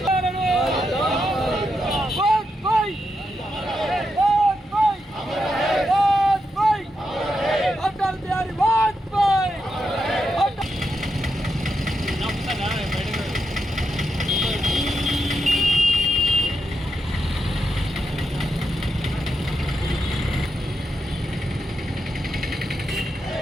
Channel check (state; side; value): normal; both; correlation 0.85